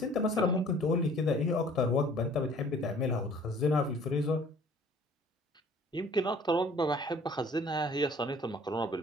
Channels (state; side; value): normal; both; correlation 0.53